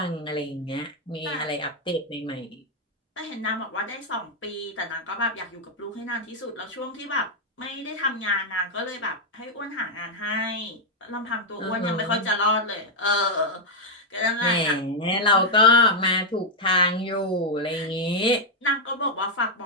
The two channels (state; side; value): normal; both; correlation -0.01